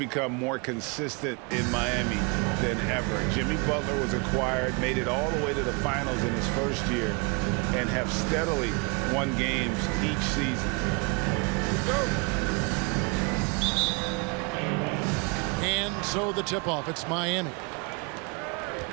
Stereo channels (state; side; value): quieter; left; 31.4 dB